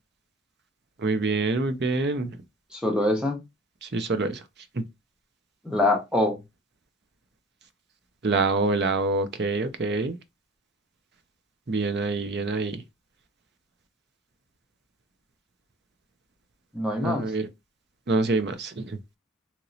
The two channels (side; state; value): both; normal; correlation 0.43